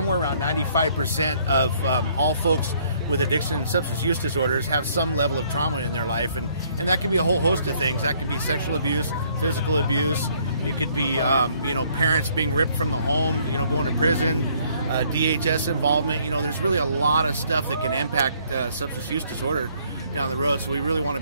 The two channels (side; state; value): both; inverted; correlation -0.64